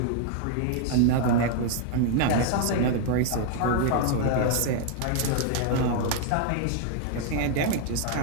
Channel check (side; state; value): both; different; correlation 0.00